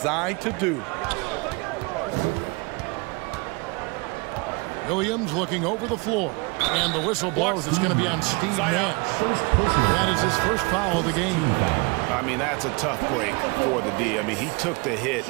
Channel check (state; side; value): quieter; left; 28.6 dB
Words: to do. Williams looking over the floor, and the whistle blows. It's going to be on Steve Nash. That is his first foul of the game. I mean, that's a tough break for the D. I mean, he took the hit